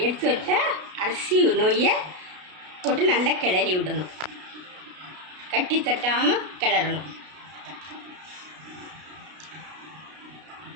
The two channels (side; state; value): left; late; 33 ms